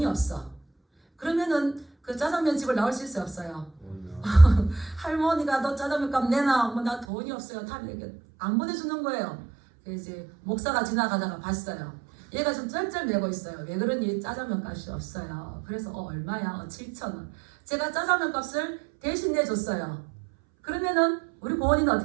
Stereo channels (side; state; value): left; drops out; at 7.1 s